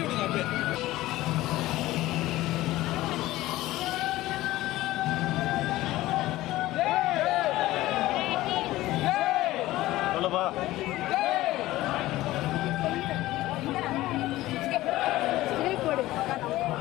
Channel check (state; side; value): quieter; right; 16.8 dB